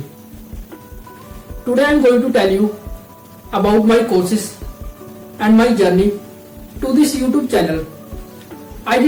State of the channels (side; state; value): both; identical; correlation 1.00